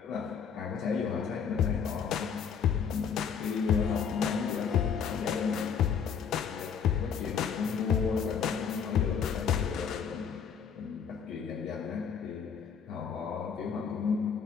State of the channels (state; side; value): quieter; right; 7.0 dB